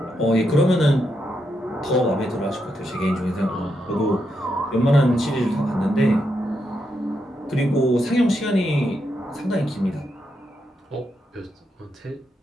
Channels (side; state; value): both; normal; correlation 0.82